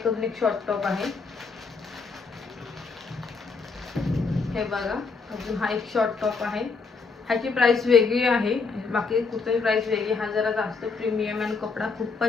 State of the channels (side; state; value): right; quieter; 4.6 dB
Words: एक शॉर्ट टॉप आहे, हे बघा. अजून हा एक शॉर्ट टॉप आहे, ह्याची प्राइस वेगळी आहे, बाकी कुठल्याही प्राइस वेगळी. हा जरा जास्त प्रीमियम आणि कपडा